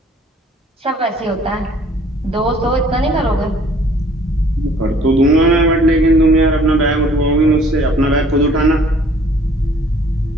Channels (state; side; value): normal; both; correlation 0.56